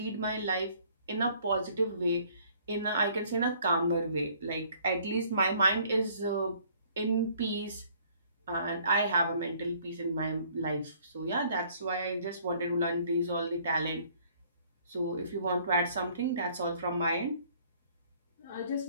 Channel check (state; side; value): inverted; both; correlation -0.59